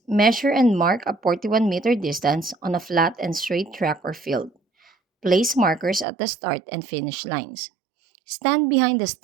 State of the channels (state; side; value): drops out; left; at 6.1 s